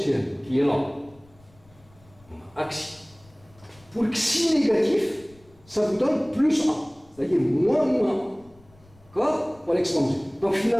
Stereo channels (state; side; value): noise; left; rumble, 28 dB below the sound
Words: qui est là. Axi. Pour xi négatif, ça vous donne plus A, c'est-à-dire moins A. D'accord? Pour l'exponentielle. Donc